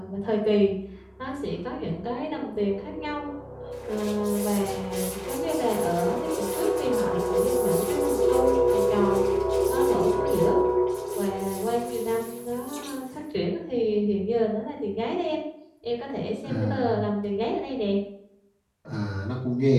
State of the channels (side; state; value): both; identical; correlation 1.00